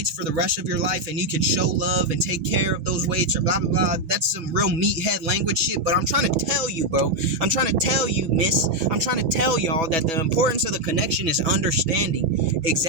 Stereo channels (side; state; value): left; late; 6.1 ms